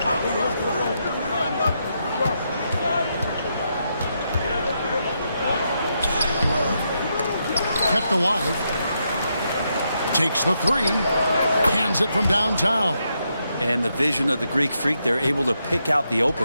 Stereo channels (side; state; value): both; inverted; correlation -0.81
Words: Kept alive. Takes the three. Hands it from downtown. And the vision of the Greek freak, they're able to pick out the